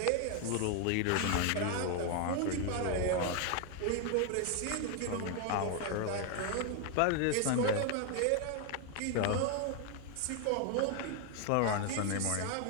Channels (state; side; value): different; both; correlation 0.01